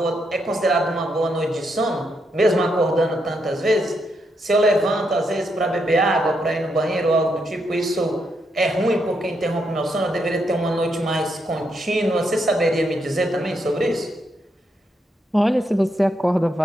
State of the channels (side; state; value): both; normal; correlation 0.80